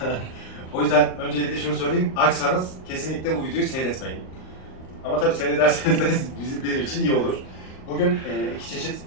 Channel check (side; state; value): right; late; 38 ms